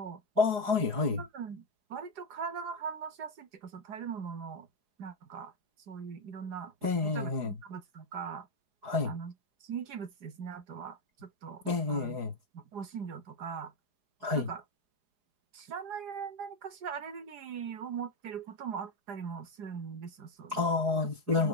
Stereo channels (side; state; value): left; late; 4.7 ms